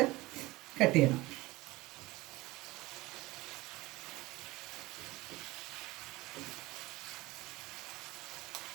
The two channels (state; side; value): quieter; left; 20.4 dB